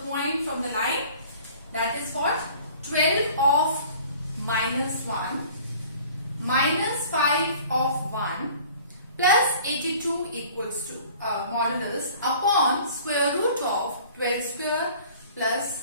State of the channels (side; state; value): both; inverted; correlation -0.49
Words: point from the line. That is what? 12 of minus 1 minus 5 of 1 plus 82 equals to modulus upon square root of 12 square